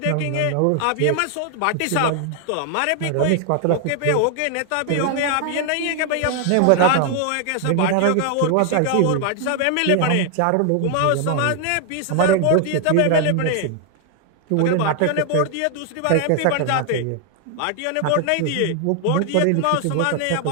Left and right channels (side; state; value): both; different; correlation 0.00